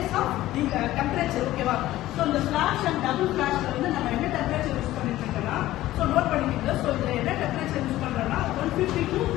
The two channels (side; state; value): right; quieter; 15.4 dB